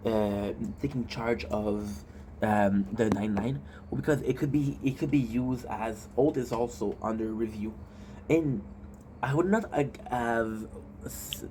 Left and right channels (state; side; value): identical; both; correlation 1.00